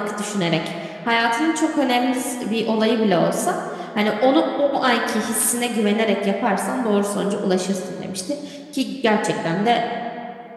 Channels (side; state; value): both; identical; correlation 1.00